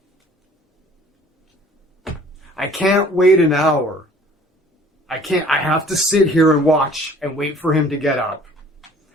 I can't wait an hour. I have to sit here and watch and wait for him to get up.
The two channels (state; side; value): normal; both; correlation 0.53